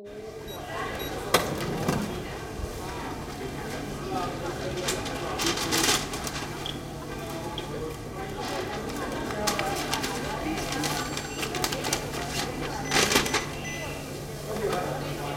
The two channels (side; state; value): both; identical; correlation 1.00